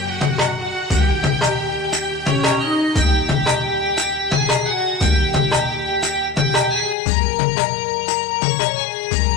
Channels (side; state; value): right; drops out; at 7.0 s